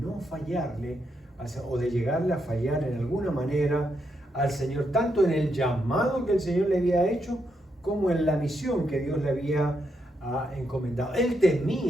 fallarle, o de llegarle a fallar en alguna manera al Señor, tanto en el llamado que el Señor le había hecho, como en la misión que Dios le había encomendado. Él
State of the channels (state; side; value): normal; both; correlation 0.80